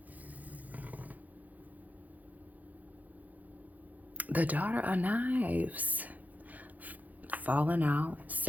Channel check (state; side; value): late; left; 0.080 ms